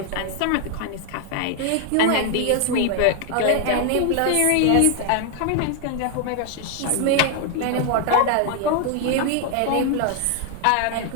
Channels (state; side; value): different; both; correlation 0.00